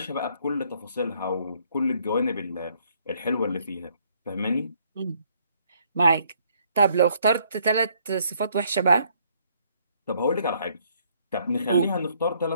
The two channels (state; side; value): inverted; both; correlation -0.66